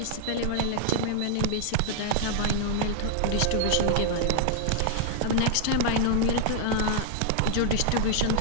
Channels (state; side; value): different; both; correlation -0.01